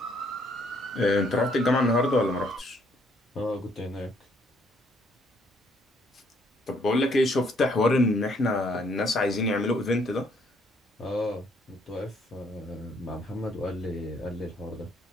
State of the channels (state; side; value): normal; both; correlation 0.67